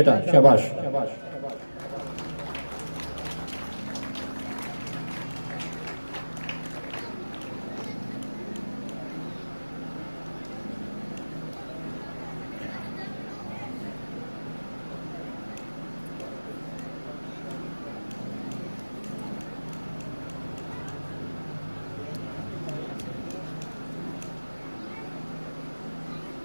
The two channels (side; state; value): both; inverted; correlation -1.00